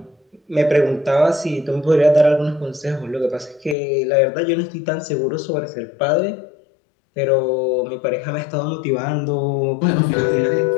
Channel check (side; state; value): right; drops out; at 3.8 s